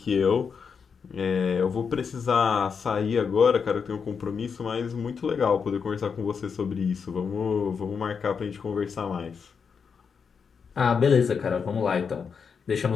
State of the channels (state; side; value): quieter; right; 6.1 dB